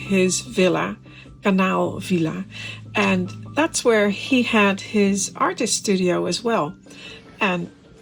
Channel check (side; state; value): both; identical; correlation 1.00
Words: villa, Kanaal Villa. And that's where he had his artist studio as well. And